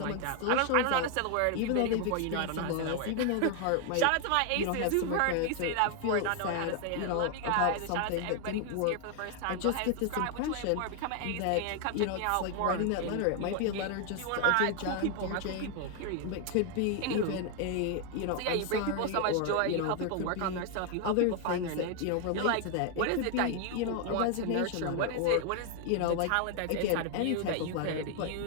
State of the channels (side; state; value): both; different; correlation 0.00